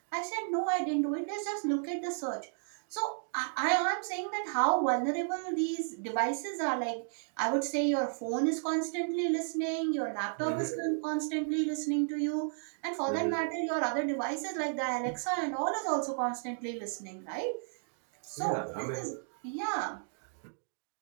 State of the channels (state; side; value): silent; left; digital silence